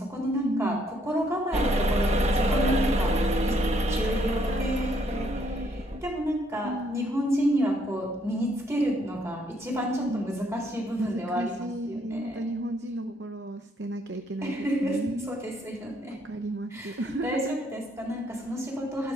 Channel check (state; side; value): normal; both; correlation 0.70